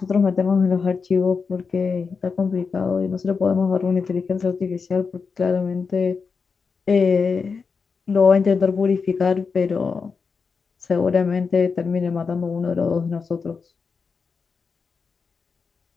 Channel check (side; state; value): right; quieter; 5.2 dB